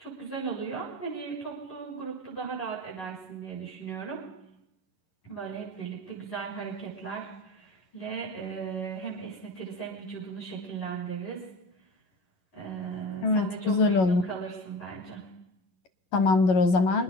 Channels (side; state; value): right; late; 11 ms